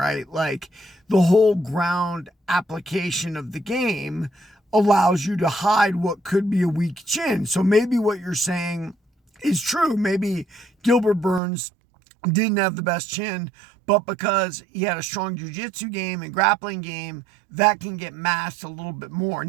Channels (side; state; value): left; drops out; at 11.4 s